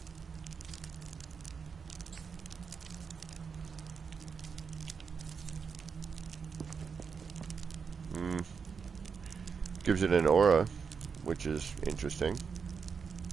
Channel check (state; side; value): quieter; left; 5.9 dB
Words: Gives it an aura, which is interesting.